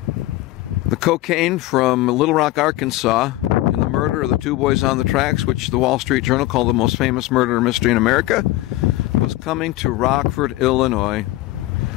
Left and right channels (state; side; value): quieter; right; 17.3 dB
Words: the cocaine from Little Rock, Arkansas, in the murder of the two boys on the tracks, which the Wall Street Journal called the most famous murder mystery in America, was coming to Rockford, Illinois.